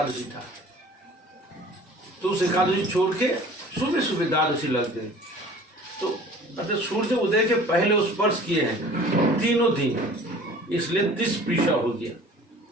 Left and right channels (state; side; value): normal; both; correlation 0.47